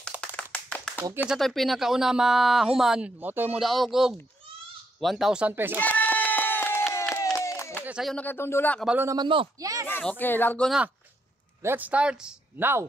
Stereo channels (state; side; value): normal; both; correlation 0.77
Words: Okay sa to'y pinakauna mahuman, mo to'y mo daog og 1,000 pesos. Okay, sayo na kayo dula, kabalo naman mo. Yes. Okay, largo na. Let's start now.